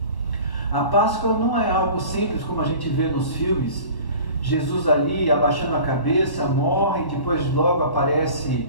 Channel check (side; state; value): right; late; 1.1 ms